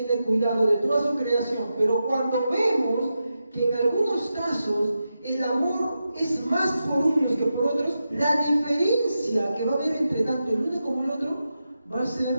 cuidado de toda su creación, pero cuando vemos que en algunos casos el amor es más por unos que por otros, la diferencia que va a haber entre tanto el uno como el otro va a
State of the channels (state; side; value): inverted; both; correlation -0.89